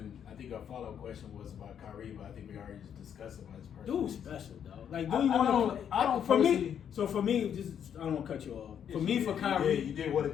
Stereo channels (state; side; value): quieter; right; 8.7 dB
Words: I think our follow-up question was about Kyrie, but I think we already just discussed about his personal. Dude's special, dog. Like, I do you want don't- to play? I don't For me, personally- so for me, just I don't want to cut you off. For Yes, me, you for did. Kyrie, You did want to